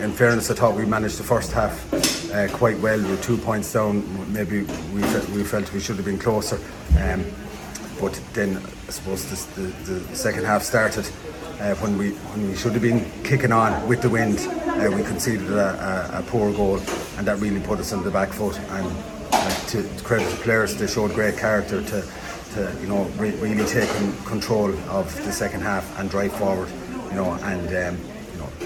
fairness, I thought we managed the first half quite well. We were 2 points down. Maybe we felt we should have been closer. But then I suppose the second half started. When we should have been kicking on with the wind, we conceded a poor goal, and that really put us on the back foot. And to credit the players, they showed great character to really take control of the second half and drive forward. We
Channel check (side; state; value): both; identical; correlation 1.00